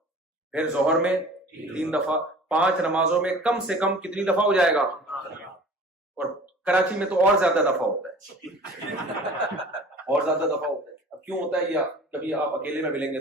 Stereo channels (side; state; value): both; normal; correlation 0.44